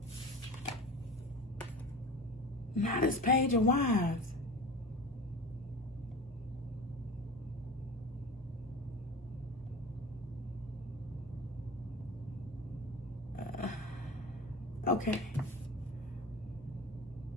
Not this page of wines. Okay.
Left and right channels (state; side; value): normal; both; correlation 0.34